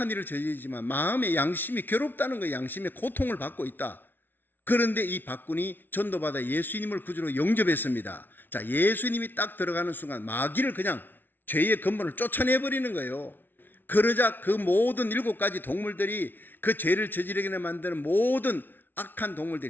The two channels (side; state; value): right; late; 0.095 ms